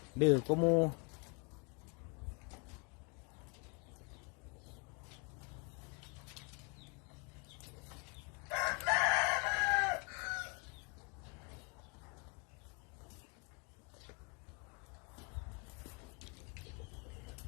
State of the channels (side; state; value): right; quieter; 32.0 dB